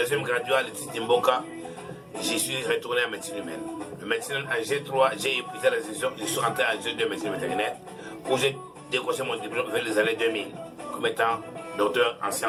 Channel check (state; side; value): identical; both; correlation 1.00